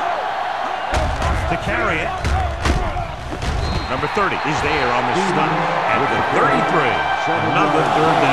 To carry it. Number 30 is there on the stop at the 33. Another third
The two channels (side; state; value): both; identical; correlation 1.00